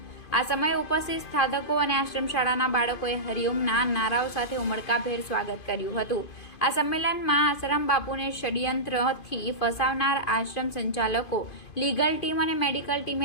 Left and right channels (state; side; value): late; right; 2.5 ms